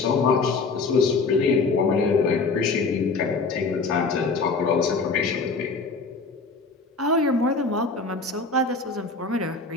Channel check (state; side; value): quieter; right; 4.1 dB